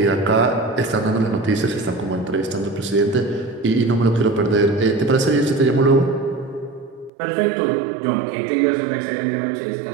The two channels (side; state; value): left; drops out; at 7.1 s